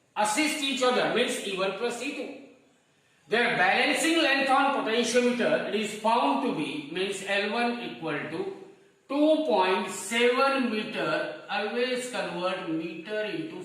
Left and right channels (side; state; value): both; identical; correlation 1.00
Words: assist each other, means E1 plus E2, their balancing length on potentiometer, it is found to be, means L1 equal to 2.7 meter. Always convert meter into